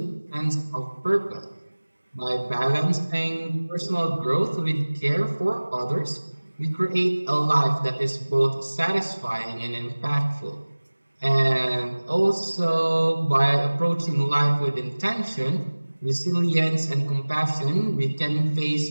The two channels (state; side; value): inverted; both; correlation -1.00